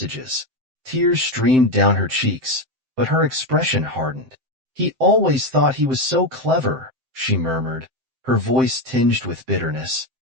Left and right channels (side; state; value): left; late; 7.7 ms